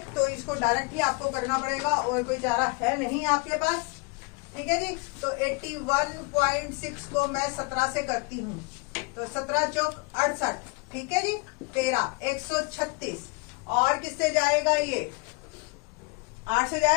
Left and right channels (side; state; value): right; quieter; 30.8 dB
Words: तो इसको डायरेक्टली आपको करना पड़ेगा और कोई चारा है नहीं आपके पास। ठीक है जी। तो 81.6 को मैं 17 से करती हूँ तो 17 चौक 68। ठीक है जी। 13 136 और किससे जाएगा? ये 8 से